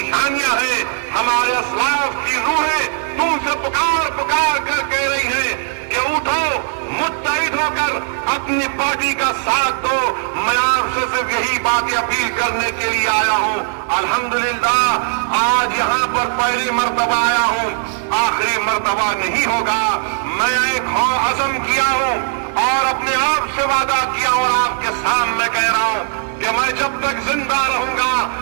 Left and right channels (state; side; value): silent; left; 57 dB below the other